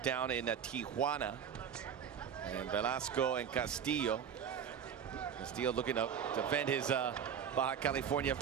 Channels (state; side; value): quieter; left; 8.1 dB